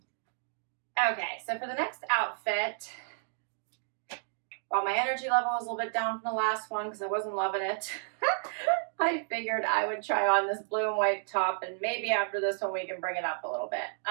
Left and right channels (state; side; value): silent; left; digital silence